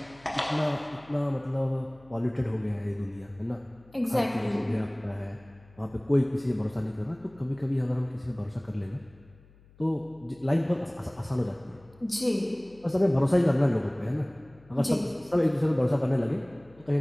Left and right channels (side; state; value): left; noise; hum, 26 dB below the sound